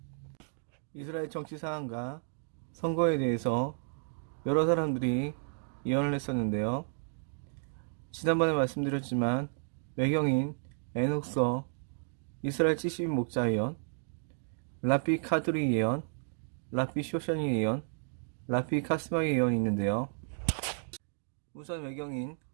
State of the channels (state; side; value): silent; left; digital silence